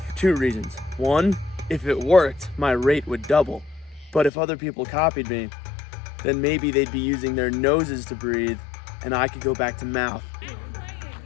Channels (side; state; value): right; drops out; at 4.3 s